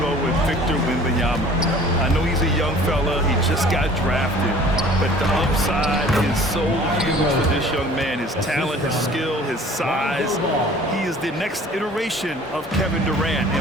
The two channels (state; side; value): normal; both; correlation 0.49